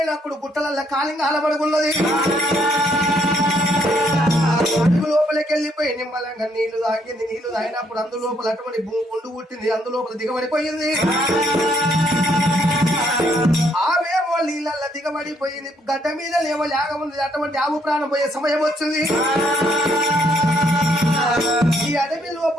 గుట్టలల్ల కాలింగా అలబడుకున్నది లోపలికి వెళ్ళిపోయి నిమ్మలంగా నీళ్లు తాగింది నీళ్లు తాగినప్పుడు అందులోపల అటువంటి గుండు పుట్టింది అందులోపల దిగబడిపోయింది ఆవేమో నీళ్ళల్లో దిగబడిపోయింది గడ్డ మీద లేవో లేకముంది అటువంటి ఆవు ప్రాణం పోయే సమయం వచ్చింది ఈ అడవి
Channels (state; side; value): normal; both; correlation 0.70